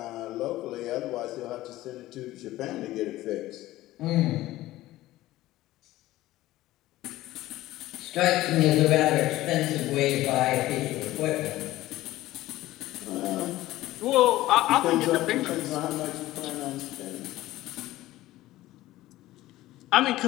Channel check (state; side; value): quieter; right; 16.3 dB